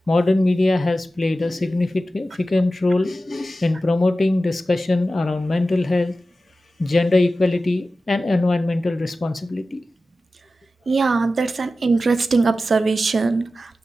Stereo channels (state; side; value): normal; both; correlation 0.94